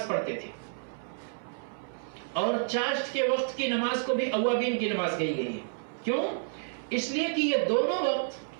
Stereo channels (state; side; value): silent; left; 58 dB below the other